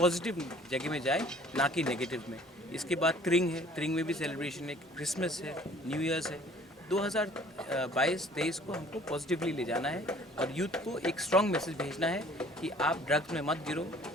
जगह में जाए, ना कि नेगेटिव में. इसके बाद त्रिंग है. त्रिंग में भी सेलिब्रेशन है, क्रिसमस है, न्यू ईयर्स है. 2022-23 को हमको पॉजिटिवली ले जाना है और यूथ को एक स्ट्रॉन्ग मैसेज भेजना है कि आप ड्रग्स में मत गिरो,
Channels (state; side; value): normal; both; correlation 0.53